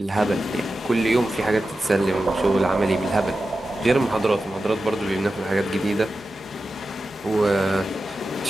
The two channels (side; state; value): both; normal; correlation 0.92